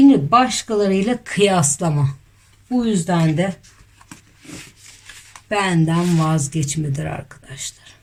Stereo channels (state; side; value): identical; both; correlation 1.00